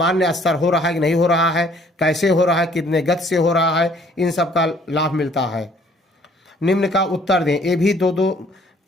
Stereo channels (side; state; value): both; normal; correlation 0.59